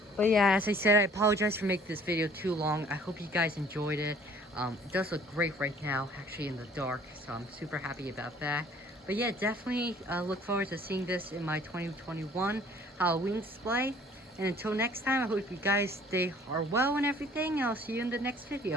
But yeah, as I said, I apologize for making this video too long. I hope you guys enjoyed it. It does look great right now, actually in the dark, so I'm super happy about that. But yeah, definitely look forward to seeing this in my 2021 Halloween display. And until next time, I hope you guys are well and everything. I'll see you in the next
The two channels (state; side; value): normal; both; correlation 0.54